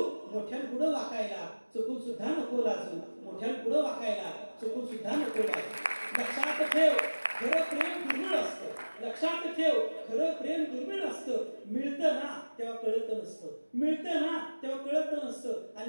मोठ्यान पुढं वाकायला चुकून सुद्धा नको लाजू, मोठ्यान पुढं वाकायला चुकून सुद्धा नको लाजू. लक्षात ठेव, खरं प्रेम दुर्मिळ असतं. लक्षात ठेव, खरं प्रेम दुर्मिळ असतं. मिळतं ना तेव्हा कळत नसतं, मिळतं ना तेव्हा कळत नसतं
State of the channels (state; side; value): inverted; both; correlation -1.00